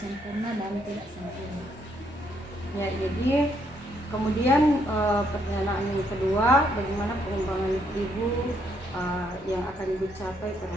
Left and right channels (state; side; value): normal; both; correlation 0.73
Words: dan tidak sempurna. Ya, jadi kemudian pertanyaan yang kedua, bagaimana pengembangan Ibu yang akan Ibu capai